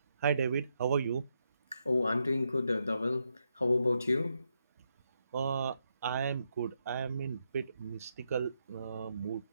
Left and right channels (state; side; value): inverted; both; correlation -0.81